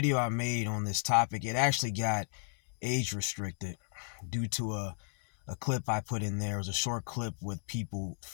I made on this topic, it actually got age restricted due to a clip I put in there. It was a short clip with people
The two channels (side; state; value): right; silent; digital silence